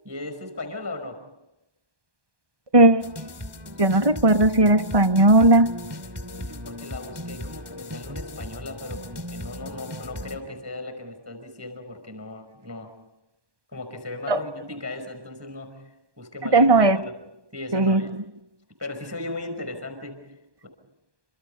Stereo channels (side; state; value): left; late; 1.2 ms